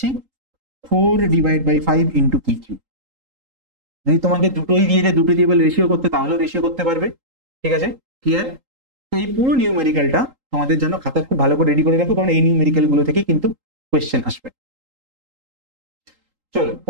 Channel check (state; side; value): late; left; 3.8 ms